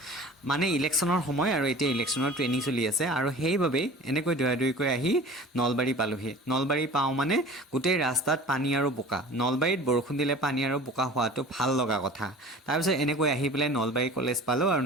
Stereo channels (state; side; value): normal; both; correlation 0.41